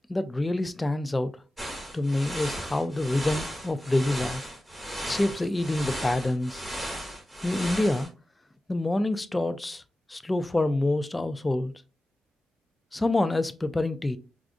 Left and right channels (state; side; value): normal; both; correlation 0.95